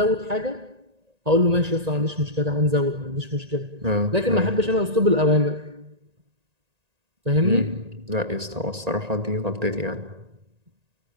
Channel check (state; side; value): late; left; 1.9 ms